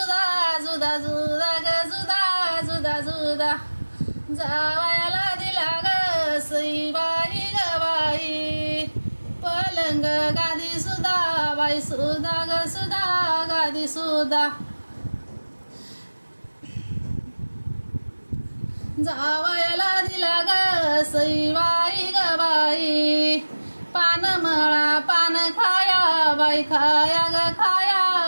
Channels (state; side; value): inverted; both; correlation -1.00